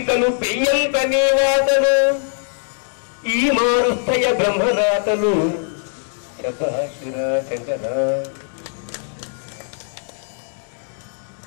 పెయ్యంత నీవాతలు ఈ మారుస్తయ బ్రహ్మరాతలు శభాషురా శంకరా.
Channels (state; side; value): silent; right; digital silence